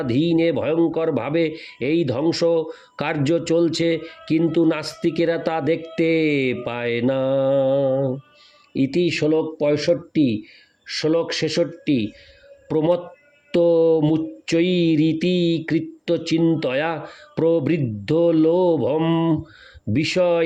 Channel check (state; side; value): identical; both; correlation 1.00